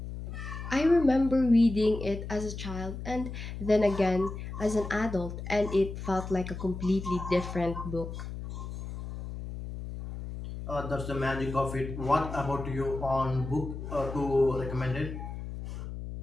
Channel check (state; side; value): noise; left; hum, 8 dB below the sound